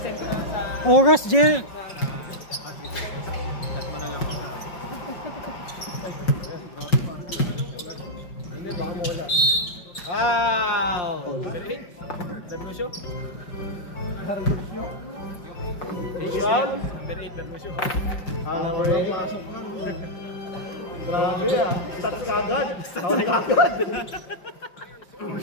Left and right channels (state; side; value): late; right; 5.6 ms